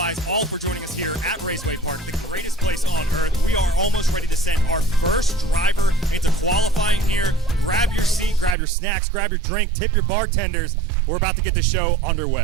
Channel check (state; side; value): drops out; left; at 8.6 s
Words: Raceway Park, the greatest place on earth. We are almost ready to send our first driver into qualifying here. Grab your seat, grab your snacks, grab your drink, tip your bartenders. We're about to get the show underway.